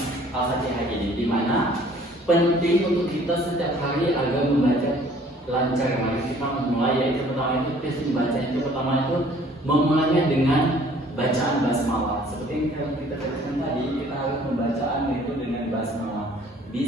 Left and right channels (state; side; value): normal; both; correlation 0.55